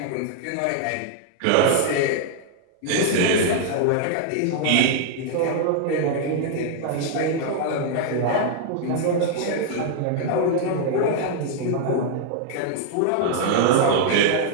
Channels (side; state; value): both; different; correlation -0.01